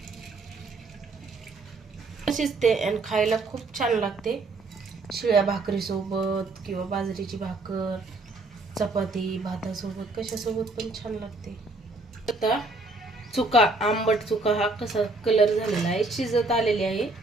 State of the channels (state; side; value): quieter; left; 3.2 dB